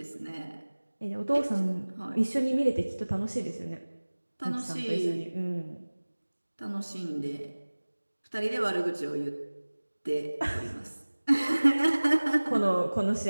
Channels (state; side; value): inverted; both; correlation -1.00